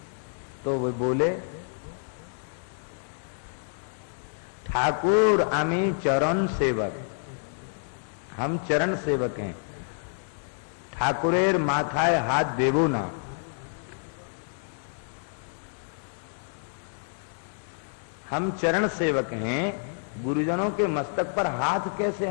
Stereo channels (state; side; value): silent; right; 59 dB below the other